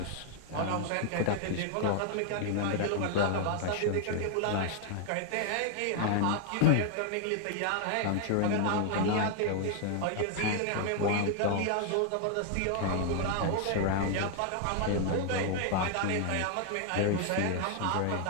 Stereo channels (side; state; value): both; different; correlation 0.00